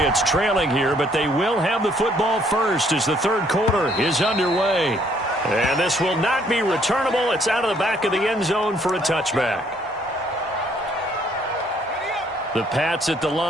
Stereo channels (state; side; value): normal; both; correlation 0.65